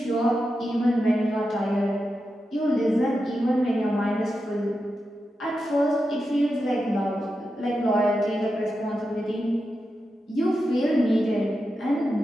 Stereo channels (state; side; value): normal; both; correlation 0.89